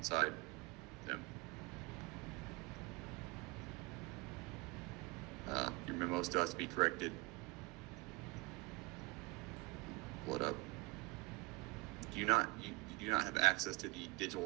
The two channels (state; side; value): quieter; left; 24.6 dB